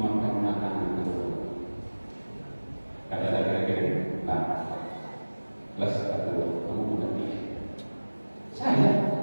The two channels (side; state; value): both; inverted; correlation -1.00